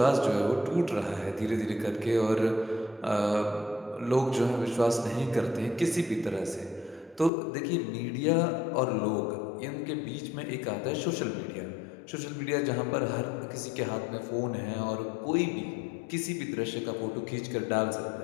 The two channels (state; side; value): drops out; right; at 7.3 s